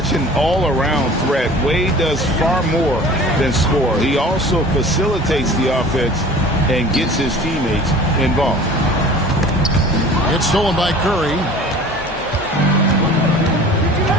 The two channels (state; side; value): normal; both; correlation 0.44